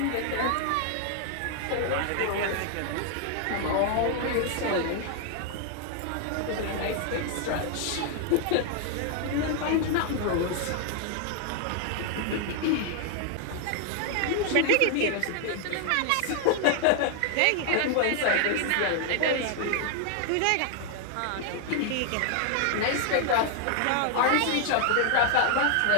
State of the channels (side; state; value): both; different; correlation 0.00